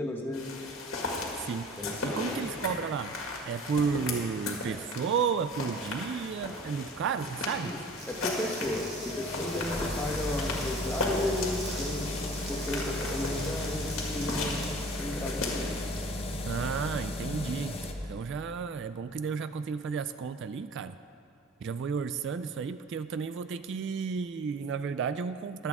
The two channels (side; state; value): both; normal; correlation 0.45